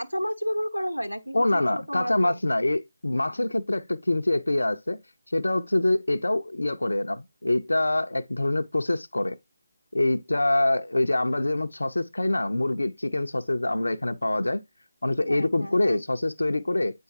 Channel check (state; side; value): inverted; both; correlation -0.99